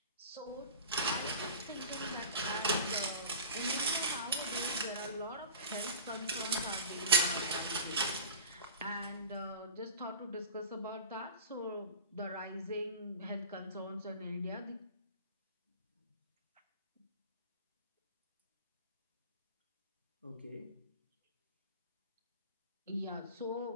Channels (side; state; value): both; inverted; correlation -0.36